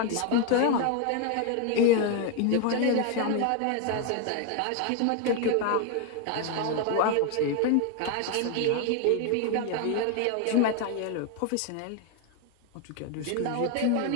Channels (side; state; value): both; different; correlation 0.01